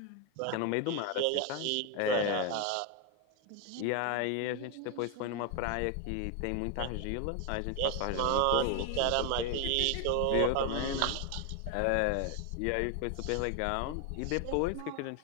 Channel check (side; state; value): both; different; correlation 0.01